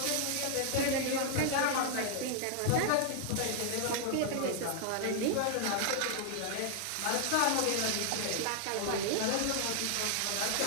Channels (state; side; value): different; both; correlation 0.00